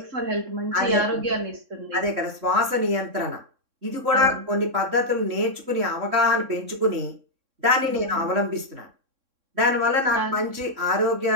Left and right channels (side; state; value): left; late; 3.6 ms